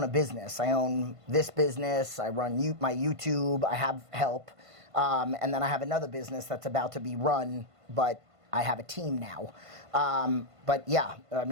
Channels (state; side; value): late; left; 1.5 ms